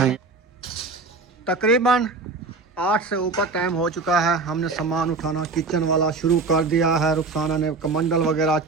तकरीबन 8 से ऊपर टाइम हो चुका है। हमने सामान उठाना किचन वाला शुरू कर दिया है। रुखसाना ने कमंडल वगैरह,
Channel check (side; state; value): left; quieter; 4.0 dB